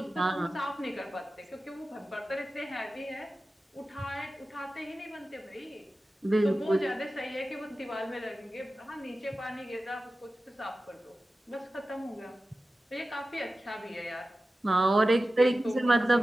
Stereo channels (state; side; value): normal; both; correlation 0.94